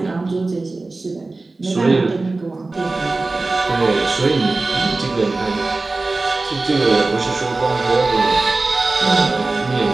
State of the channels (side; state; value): left; quieter; 3.4 dB